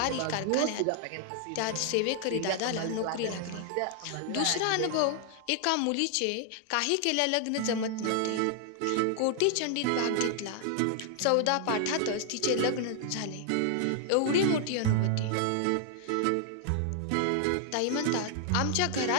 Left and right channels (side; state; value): both; different; correlation 0.00